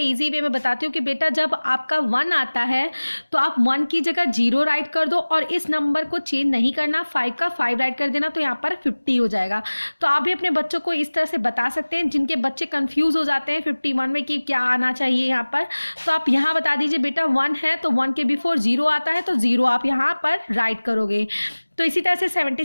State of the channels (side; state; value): both; inverted; correlation -1.00